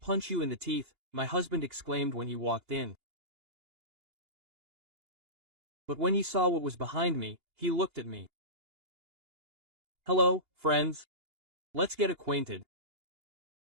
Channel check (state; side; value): late; left; 2.8 ms